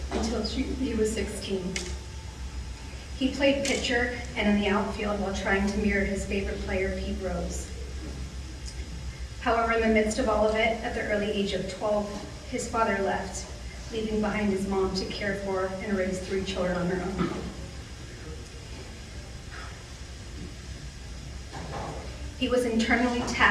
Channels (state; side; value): identical; both; correlation 1.00